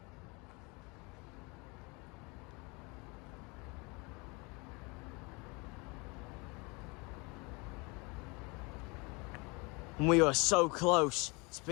And we are so close. It's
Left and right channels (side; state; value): right; quieter; 28.0 dB